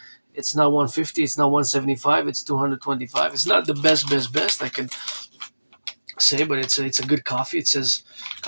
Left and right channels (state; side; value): inverted; both; correlation -1.00